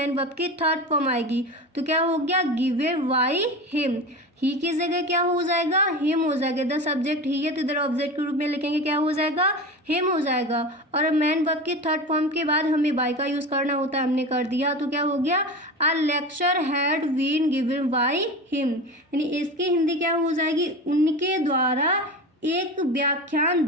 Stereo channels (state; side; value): normal; both; correlation 0.28